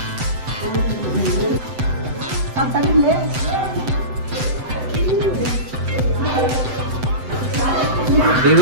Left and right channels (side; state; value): left; late; 7.9 ms